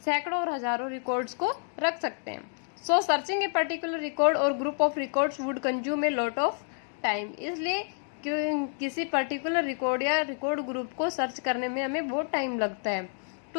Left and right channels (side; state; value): right; silent; 55 dB below the other